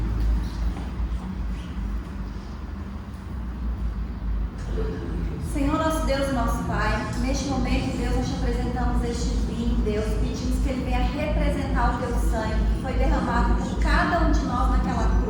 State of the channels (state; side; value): identical; both; correlation 1.00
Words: Senhor, nosso Deus e nosso Pai, neste momento, Deus, nós te apresentamos este vinho, Deus, pedimos que ele venha representar o teu sangue, que foi derramado por cada um de nós naquela